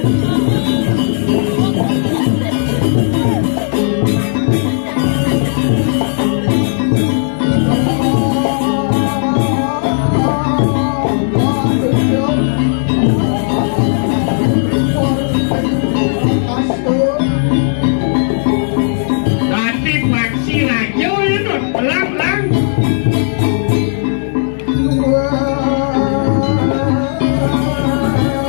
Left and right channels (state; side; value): silent; right; digital silence